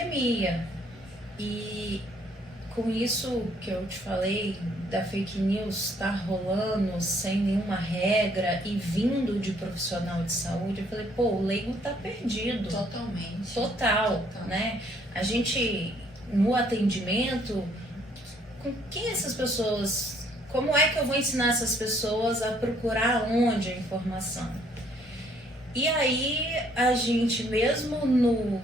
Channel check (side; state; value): left; noise; rumble, 28 dB below the sound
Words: e com isso que eu te falei, da fake news estar rolando sem nenhuma regra e vindo de profissional de saúde, eu falei, o leigo tá perdido. Totalmente. Total, né? A gente, no atendimento, com quem essas pessoas, como é que eu vou ensinar essas pessoas a procurar onde a informação? E aí, a gente, mesmo